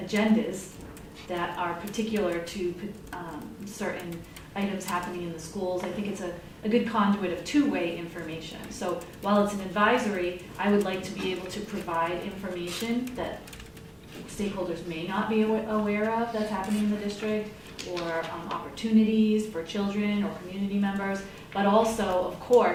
agendas that are particular to certain items happening in the schools, I think it's a good conduit of two-way information. So while it's an advisory, I would like to be able to provide information that stakeholders may not be aware of that's happening in the district, or opportunities for children or community members, but also, of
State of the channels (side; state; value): both; identical; correlation 1.00